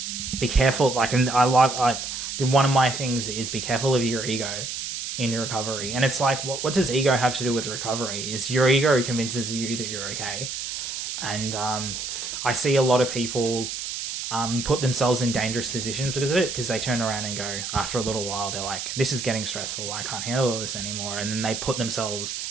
be careful, like, and I like one of my things is be careful of your ego in your recovery. And it's like, what does ego have to do with recovery? Is your ego convinces you that you're okay? And I see a lot of people put themselves in dangerous positions because of it, because they turn around and go, after a little while, they're like, this is getting stressful, I can't handle this anymore. And then they put themselves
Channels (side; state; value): right; noise; hiss, 5 dB below the sound